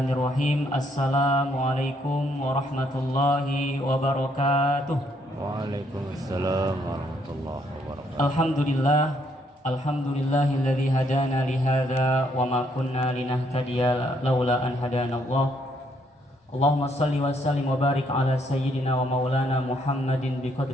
Assalamualaikum warahmatullahi wabarakatuh. Waalaikumsalam warahmatullahi wabarakatuh. Alhamdulillahilladzi hadana li hadza wa ma kunna linahtadiya laula an hadanallah. Allahumma shalli wa sallim wa barik ala sayyidina wa maulana Muhammadin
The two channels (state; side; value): normal; both; correlation 0.71